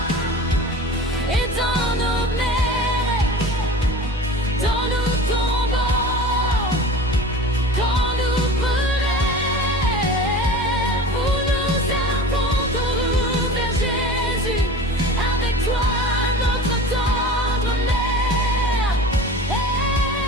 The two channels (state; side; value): normal; both; correlation 0.37